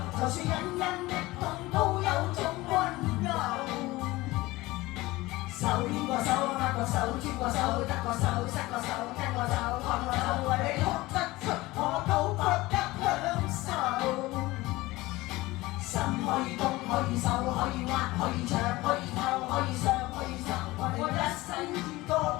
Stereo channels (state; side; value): quieter; right; 19.7 dB